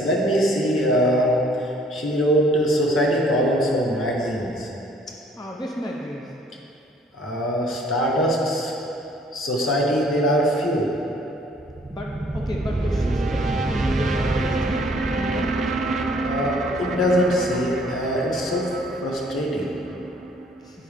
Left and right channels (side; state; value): both; normal; correlation 0.59